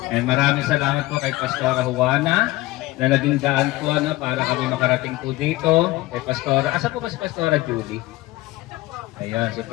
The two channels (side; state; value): right; quieter; 18.9 dB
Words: And maraming salamat po kay Pastora Juana na naging daan po para kami makarating po dito. Kay Pastora, asa po ba si Pastora Julie? Ayan, si